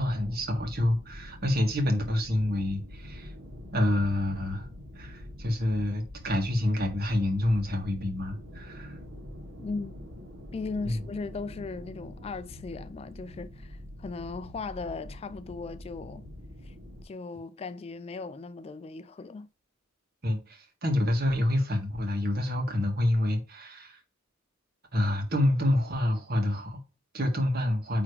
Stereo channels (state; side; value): normal; both; correlation 0.85